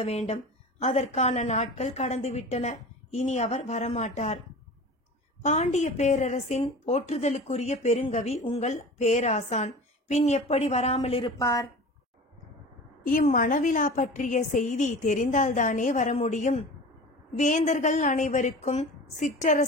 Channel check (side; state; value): both; normal; correlation 0.36